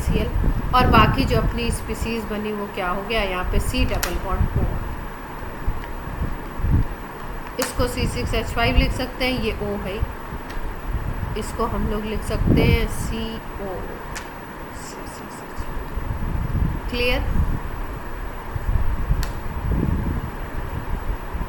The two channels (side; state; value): both; identical; correlation 1.00